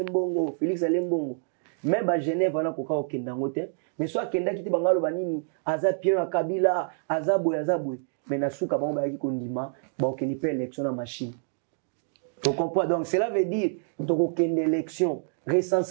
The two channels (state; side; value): silent; left; 60 dB below the other